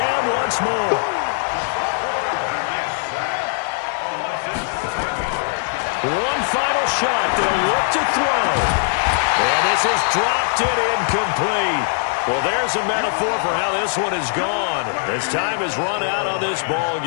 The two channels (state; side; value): silent; right; digital silence